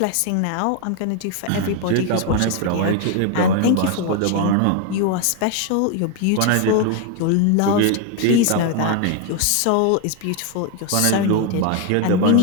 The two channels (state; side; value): different; both; correlation 0.01